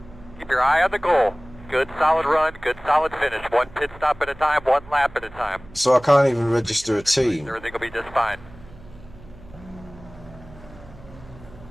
keep your eye on the goal. Good solid run, good solid finish. One pit stop at a time, one lap at a time. So I can't even register a team. Everything will be just fine.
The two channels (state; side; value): noise; right; hum, 20 dB below the sound